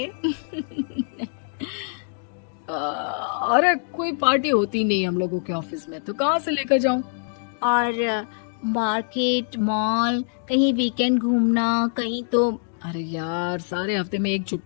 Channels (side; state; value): right; silent; digital silence